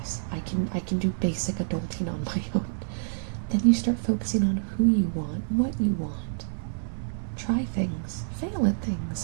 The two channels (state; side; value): silent; left; digital silence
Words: I can do basic adulting on my own, then you start focusing on who you want, what you want. Try things, fail at